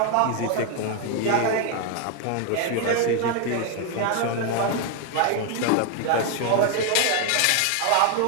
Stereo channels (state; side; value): different; both; correlation 0.00